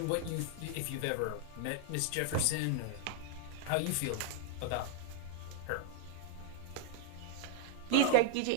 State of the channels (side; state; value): both; different; correlation -0.01